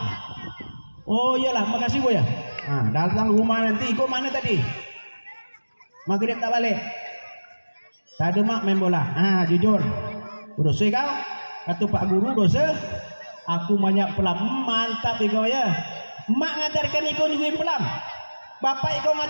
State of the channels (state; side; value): inverted; both; correlation -1.00